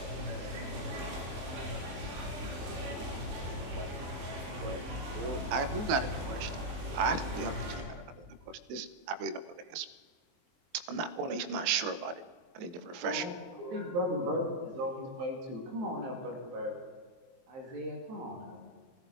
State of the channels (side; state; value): left; late; 23 ms